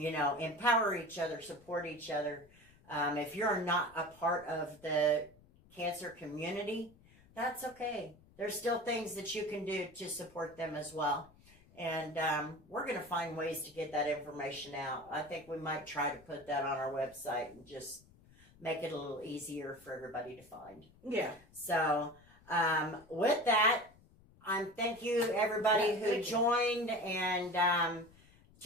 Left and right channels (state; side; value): noise; left; rumble, 26 dB below the sound